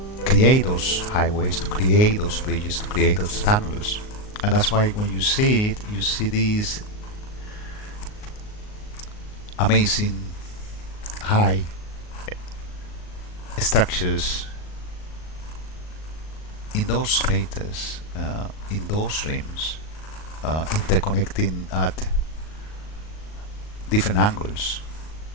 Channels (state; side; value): late; right; 38 ms